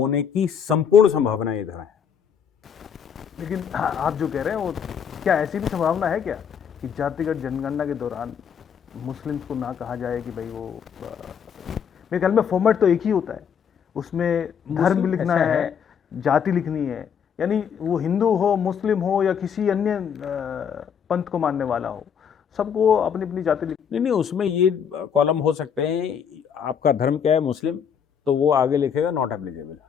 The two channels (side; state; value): right; quieter; 7.6 dB